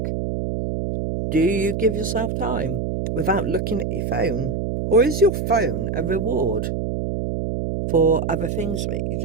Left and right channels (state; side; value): noise; right; hum, 2 dB below the sound